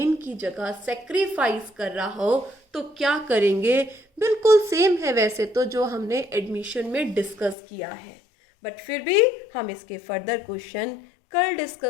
की जगह सेक्रीफाइस कर रहा हो तो क्या करेंगे? बिल्कुल सेम है वैसे तो जो हमने एडमिशन में डिस्कस किया है, बट फिर भी हम इसके फर्दर क्वेश्चन कल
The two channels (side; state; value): right; drops out; at 7.6 s